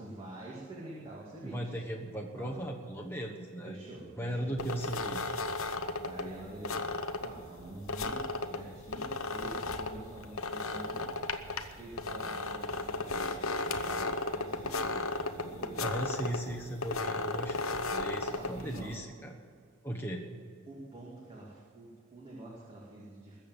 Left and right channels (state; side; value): normal; both; correlation 0.04